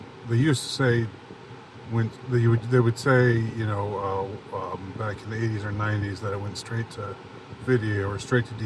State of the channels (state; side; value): identical; both; correlation 1.00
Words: they used to say when they would say, back in the 80s or 90s that it went straight to video or straight to